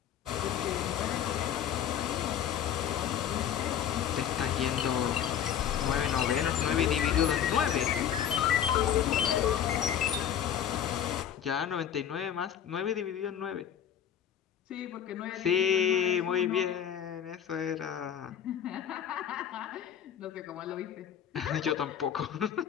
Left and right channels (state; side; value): quieter; right; 9.3 dB